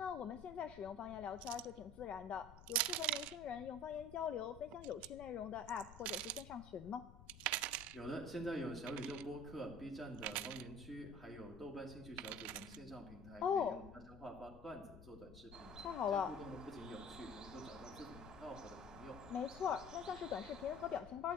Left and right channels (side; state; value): left; noise; rumble, 16 dB below the sound